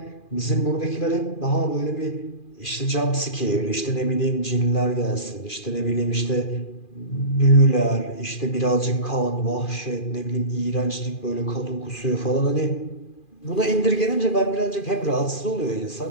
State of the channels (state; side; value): late; right; 2.4 ms